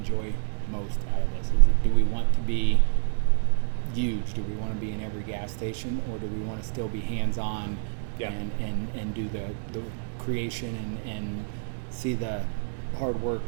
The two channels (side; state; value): left; silent; digital silence